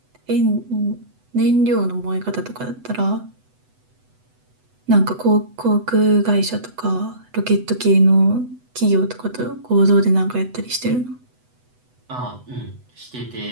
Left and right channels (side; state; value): left; late; 8.0 ms